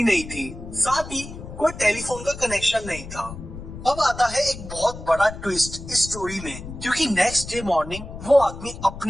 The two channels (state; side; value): noise; left; rumble, 12 dB below the sound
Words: नहीं थी, साथ ही कोई टेलीफोन का कनेक्शन नहीं था। अब आता है एक बहुत बड़ा ट्विस्ट इस स्टोरी में, क्योंकि नेक्स्ट डे मॉर्निंग वो आदमी